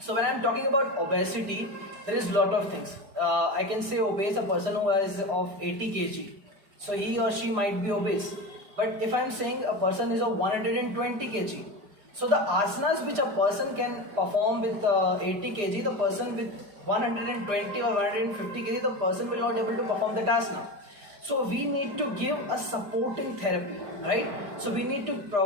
when I'm talking about obesity, there is lot of things. I can say obese, a person who is of 80 kg, so he or she might be obese. But if I'm saying a person is of 120 kg, so the asanas which a person can perform with 80 kg, the person with 120 or 150 kg, the person will not able to perform that asana. So we need to give a supporting therapy, right? So we need to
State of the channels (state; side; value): late; left; 4.9 ms